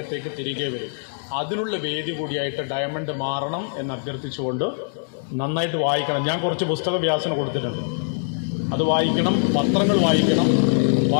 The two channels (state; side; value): silent; right; digital silence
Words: തിരികെ വരും. അതിനുള്ള വേദി കൂടിയായിട്ട് ഡയമണ്ട് മാറണം എന്ന് അഭ്യർത്ഥിച്ചുകൊണ്ട് നന്നായിട്ട് വായിക്കണം. ഞാൻ കുറച്ച് പുസ്തക വ്യാസന കൊടുത്തിട്ടുണ്ട്. അത് വായിക്കണം, പത്രങ്ങൾ വായിക്കണം.